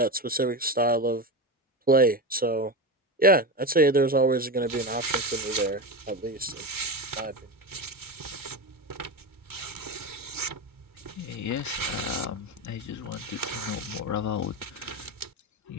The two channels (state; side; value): normal; both; correlation 0.20